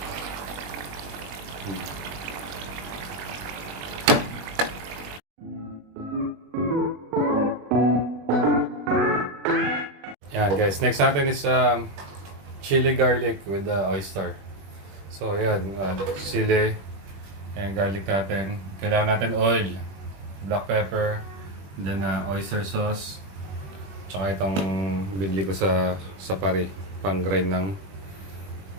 Yan guys, next natin is chili garlic with the oyster. So yan, sili and garlic natin. Kailangan natin oil, black pepper, then oyster sauce, tsaka itong binili ko sa pari, pang grind ng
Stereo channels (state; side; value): late; left; 21 ms